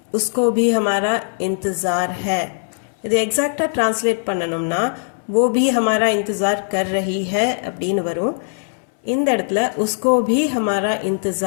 உஸ்கோ பி ஹமாரா இன்தஜார் ஹே. இது எக்ஸாக்டாக ட்ரான்ஸ்லேட் பண்ணணும்னா वो भी हमारा इंतज़ार कर रही है அப்படின்னு வரும். இந்த இடத்துல உஸ்கோ भी हमारा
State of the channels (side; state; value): right; silent; 64 dB below the other